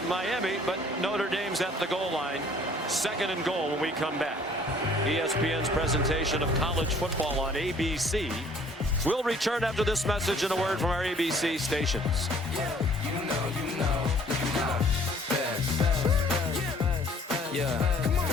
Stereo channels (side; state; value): both; normal; correlation 0.57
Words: Miami, but Notre Dame's at the goal line. 2nd and goal when we come back. ESPN's presentation of college football on ABC. We'll return after this message and a word from our ABC stations.